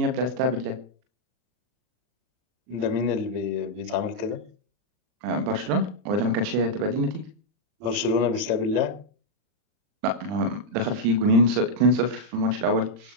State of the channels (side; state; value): left; late; 40 ms